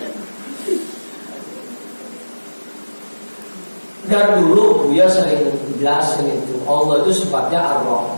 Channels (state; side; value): inverted; both; correlation -1.00